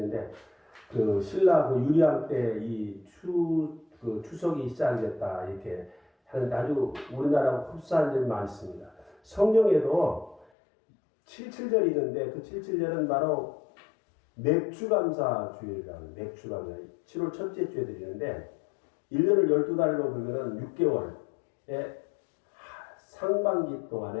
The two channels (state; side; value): drops out; right; at 10.5 s